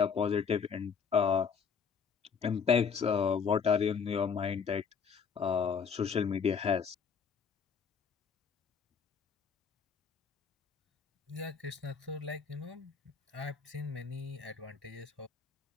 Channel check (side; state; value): right; quieter; 6.3 dB